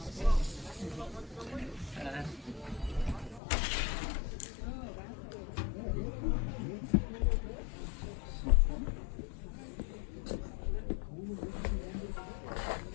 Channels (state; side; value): drops out; right; at 3.4 s